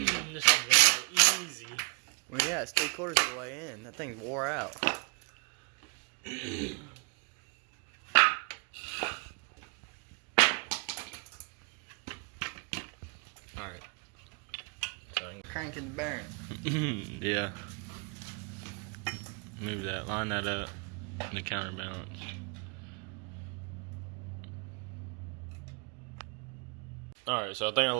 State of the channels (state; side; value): quieter; left; 34.4 dB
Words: This is gonna go easy. Well, yeah, it's 3/4 of the way in. That thing's wore out. Alright. cranking the bearing. Yeah. Move that. Line that up. The counterbalance. Alright, so I think I